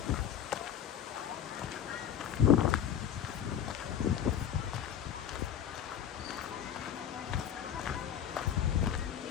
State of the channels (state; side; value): quieter; right; 9.5 dB